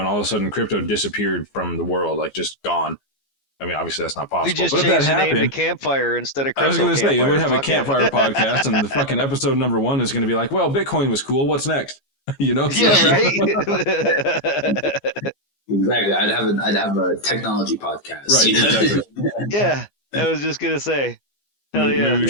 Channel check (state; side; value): late; right; 14 ms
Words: all of a sudden crypto disappeared from the world, like just gone. I mean, obviously that's not possible. We just changed the name to Campfire instead of Crypto. I was going to say, we have a Campfire podcast, and the fucking episode number 1 is going to be like, well, Bitcoin was cool. What's next? Yeah, right. Exactly. I'd have a technology podcast. Right. Exactly. Yeah. I was just going to say, hell yeah. Maybe we